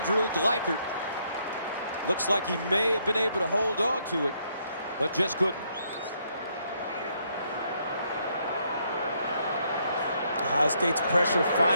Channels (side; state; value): both; inverted; correlation -0.72